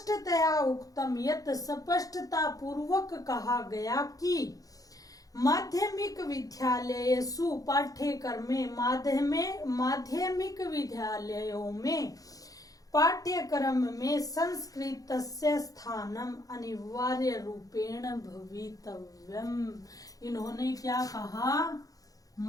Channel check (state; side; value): late; right; 0.17 ms